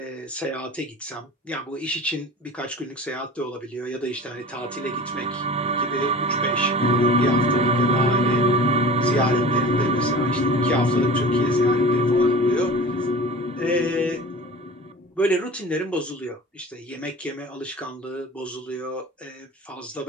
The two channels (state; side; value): normal; both; correlation 0.38